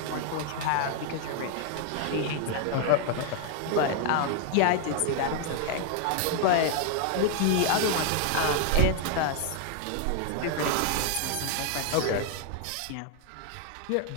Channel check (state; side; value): different; both; correlation 0.00